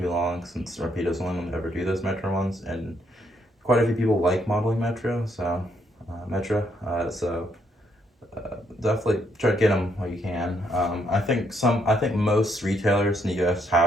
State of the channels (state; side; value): normal; both; correlation 0.73